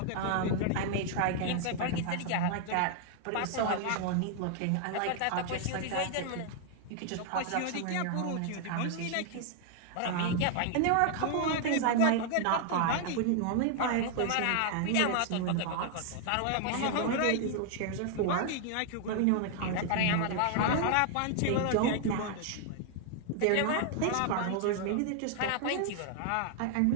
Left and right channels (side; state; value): both; different; correlation 0.00